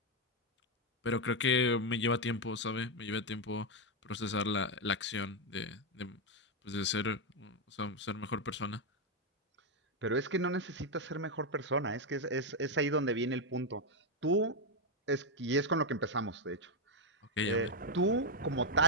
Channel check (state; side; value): normal; both; correlation 0.03